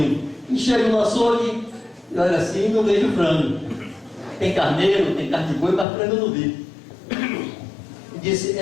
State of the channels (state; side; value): drops out; right; at 5.9 s